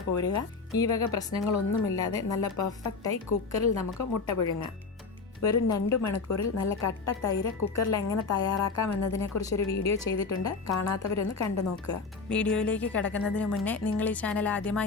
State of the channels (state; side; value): quieter; right; 4.4 dB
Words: പോരുക. ഈ വക പ്രശ്നങ്ങളൊന്നുമില്ലാതെ നല്ല പെർഫെക്റ്റായി കുക്കറിൽ നമുക്ക് മുട്ട പുഴുങ്ങാം. വെറും 2 മണിക്കൂറിൽ നല്ല കട്ട തൈര് കുക്കറിൽ എങ്ങനെ തയ്യാറാക്കാം എന്നതിനെക്കുറിച്ചൊരു വീഡിയോ ചെയ്തിട്ടുണ്ട്. കാണാത്തവരൊന്ന് കണ്ടു നോക്കുക. വീഡിയോയിലേക്ക് കിടക്കുന്നതിന് മുന്നേ നിങ്ങൾ ഈ ചാനൽ